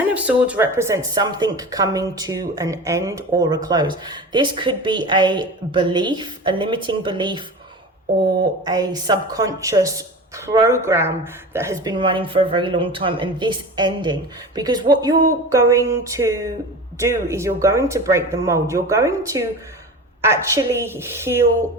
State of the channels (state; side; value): normal; both; correlation 0.32